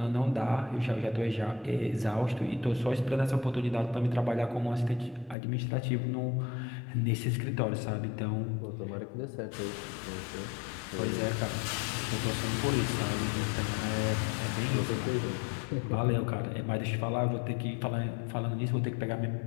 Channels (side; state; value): right; drops out; at 5.4 s